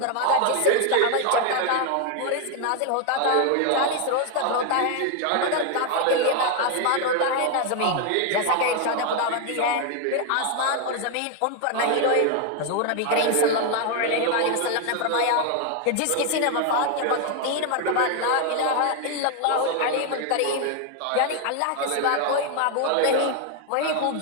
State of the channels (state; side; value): different; both; correlation 0.01